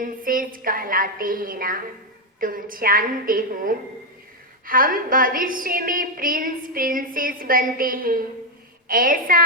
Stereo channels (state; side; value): normal; both; correlation 0.04